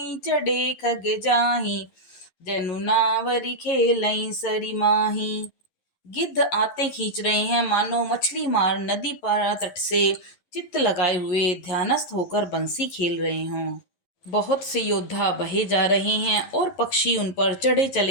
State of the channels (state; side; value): late; right; 11 ms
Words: चढ़े खग जाहि जनु नावरी खेलई सरी माही। गिद्ध आते खींच रहे हैं मानो मछली मार नदी पार तट से चित्त लगाए हुए ध्यानस्थ होकर बंसी खेल रहे हों। बहुत से योद्धा बहे जा रहे हैं और पक्षी उन पर चढ़े